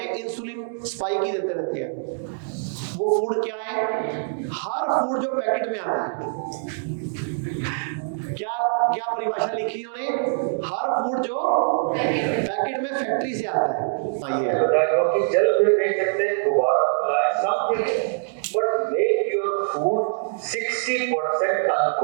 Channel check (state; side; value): silent; left; 63 dB below the other